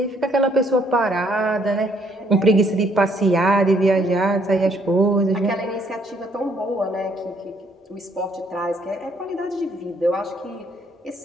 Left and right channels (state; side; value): normal; both; correlation 0.67